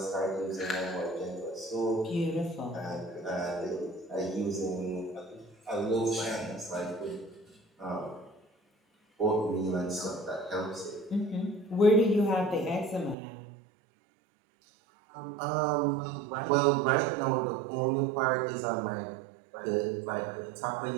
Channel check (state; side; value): drops out; left; at 13.2 s